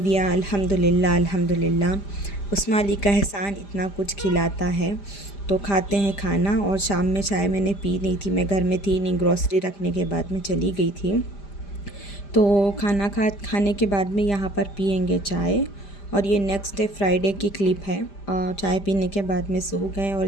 अल्हम्दुलिल्लाह अल्हम्दुलिल्लाह, उस्मा अली का एहसान इतना कुछ खिलाता है। तो खाते हैं खाना। और शाम में चाय मैंने पी नहीं थी, मैं घर में थी नहीं, ग्रॉसरी रखने के बाद में चली गई थी। तो खाना खाने के बाद में यहाँ पर पियेंगे चाय। और ये नेक्स्ट डे फ्राइडे की क्लिप है। चाय पीने के बाद में सो गए, और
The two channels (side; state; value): right; late; 5.0 ms